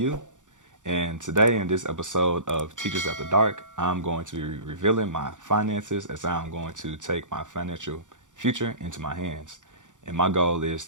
and today in this episode of Teachers After Dark, I'm going to be revealing my finances as I'm going to take my financial future into my hands. And my goal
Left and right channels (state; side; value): late; left; 0.86 ms